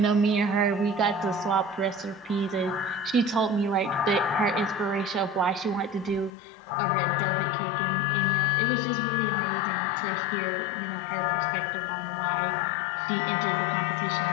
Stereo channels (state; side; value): drops out; right; at 6.3 s